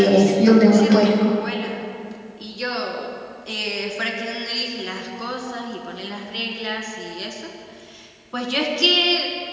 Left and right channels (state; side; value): identical; both; correlation 1.00